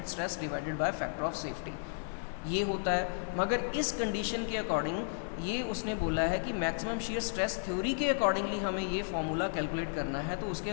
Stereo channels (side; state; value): right; silent; 55 dB below the other